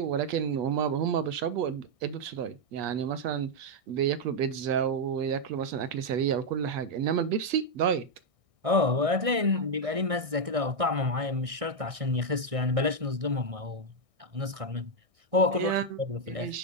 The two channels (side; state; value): left; late; 1.6 ms